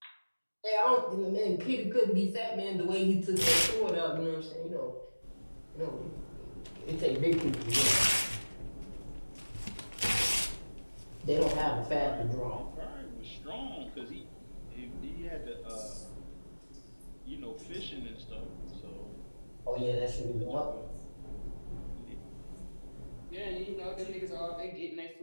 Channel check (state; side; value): inverted; both; correlation -1.00